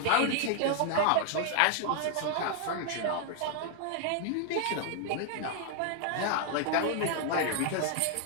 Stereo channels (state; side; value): different; both; correlation 0.00